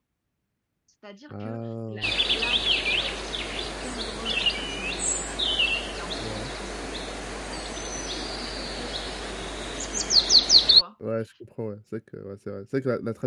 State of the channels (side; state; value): both; identical; correlation 1.00